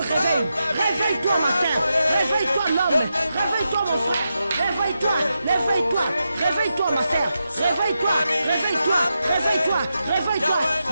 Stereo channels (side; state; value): both; inverted; correlation -0.87